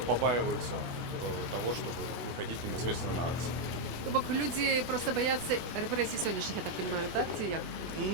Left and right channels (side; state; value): left; late; 24 ms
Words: побаиваются того, чтобы выходить непосредственно на акции. Тобто люди просто бояться репресій сьогоднішніх, я так розумію, так? Чи як?